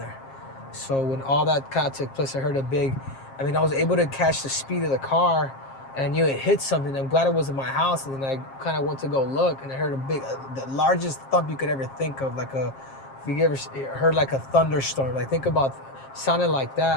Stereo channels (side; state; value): right; late; 7.5 ms